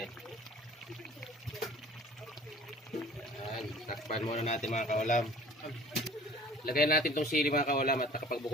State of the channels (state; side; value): normal; both; correlation 0.47